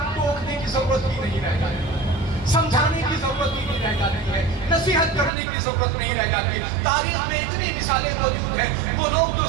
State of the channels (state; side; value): drops out; left; at 5.3 s